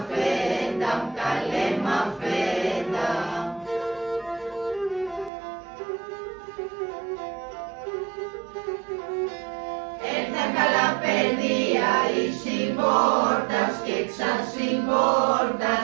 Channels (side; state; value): left; drops out; at 5.3 s